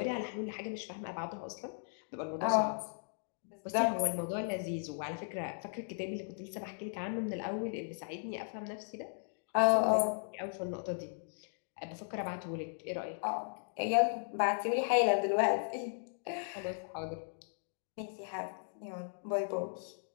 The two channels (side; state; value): right; silent; digital silence